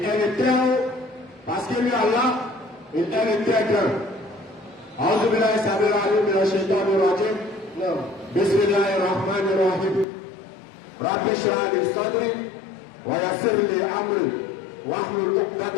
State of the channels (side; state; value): right; drops out; at 10.1 s